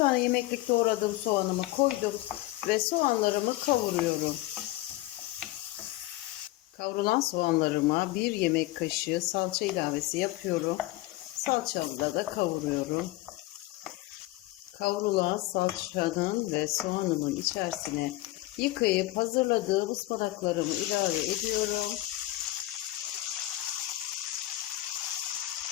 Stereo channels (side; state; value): right; quieter; 17.8 dB